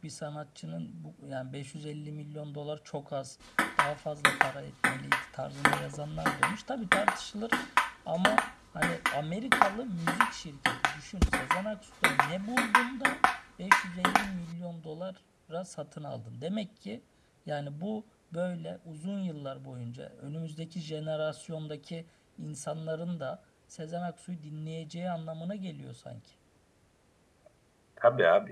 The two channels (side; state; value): both; identical; correlation 1.00